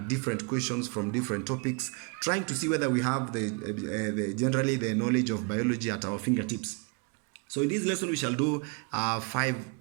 different questions from different topics, trying to see whether we have generally the knowledge of biology at our fingertips. So in this lesson we shall do 5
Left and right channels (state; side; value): quieter; left; 33.6 dB